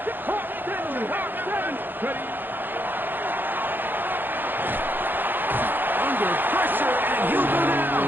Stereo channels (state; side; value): late; left; 0.093 ms